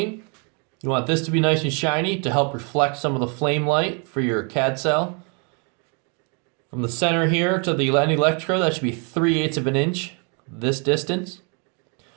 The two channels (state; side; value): quieter; left; 36.6 dB